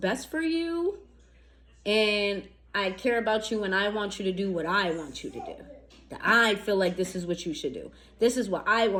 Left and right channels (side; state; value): both; identical; correlation 1.00